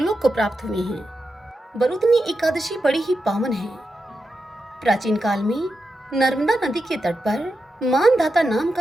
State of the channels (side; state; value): both; normal; correlation 0.88